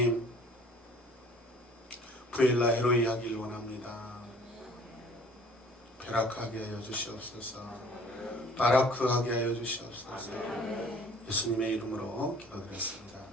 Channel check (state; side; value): normal; both; correlation 0.52